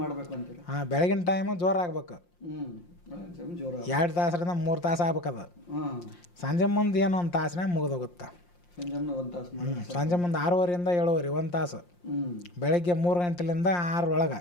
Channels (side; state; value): right; late; 5.7 ms